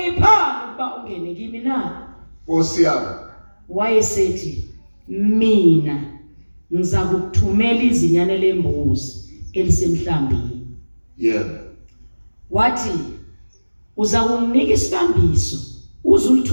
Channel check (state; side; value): inverted; both; correlation -1.00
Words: ukuba ungene kimi na? Nkosi yami. Wayesethi, mina ngiza kukuthumela izinyane lembuzi elisemhlambini. Wathi uza kunginika isibambiso